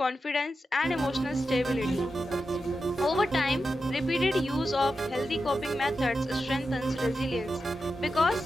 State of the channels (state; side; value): normal; both; correlation 0.90